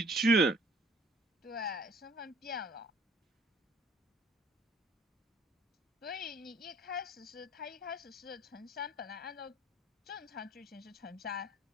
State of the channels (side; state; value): both; normal; correlation 0.54